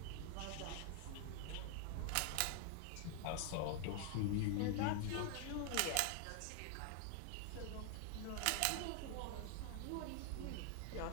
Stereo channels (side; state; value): both; different; correlation 0.00